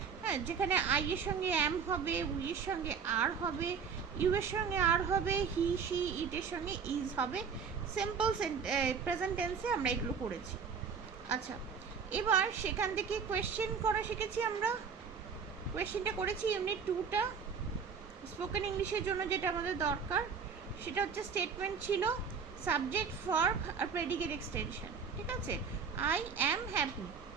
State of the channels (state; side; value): quieter; left; 6.3 dB